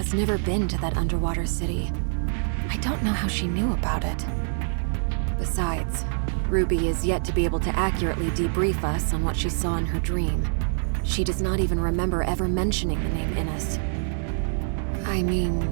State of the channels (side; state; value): left; silent; digital silence